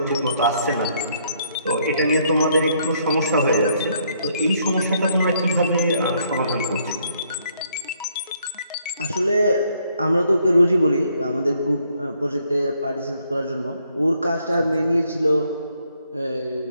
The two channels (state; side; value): inverted; both; correlation -0.70